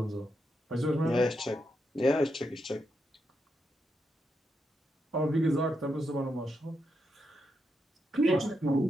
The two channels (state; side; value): normal; both; correlation 0.83